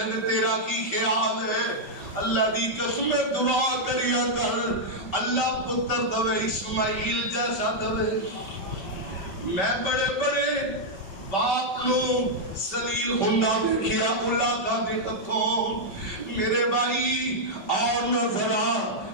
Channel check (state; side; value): late; right; 5.1 ms